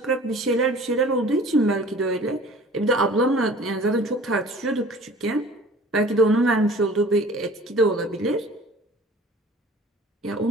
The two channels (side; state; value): both; normal; correlation 0.46